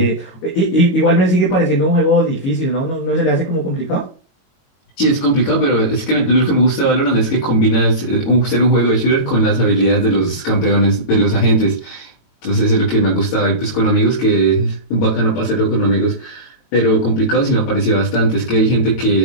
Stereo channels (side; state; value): right; late; 22 ms